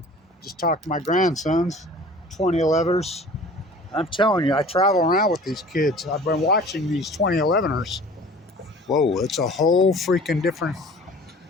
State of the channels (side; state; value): both; normal; correlation 0.45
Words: Just talked to my grandsons, 2011ers. I'm telling you, I travel around with these kids. I've been watching these 2011ers. Whoa, it's a whole freaking different...